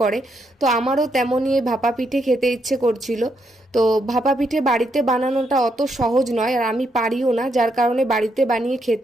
করে। তো আমারও তেমনই এই ভাপা পিঠে খেতে ইচ্ছে করছিল। তো ভাপা পিঠে বাড়িতে বানানোটা অত সহজ নয়, আর আমি পারিও না, যার কারণে বাড়িতে বানিয়ে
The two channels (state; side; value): normal; both; correlation 0.78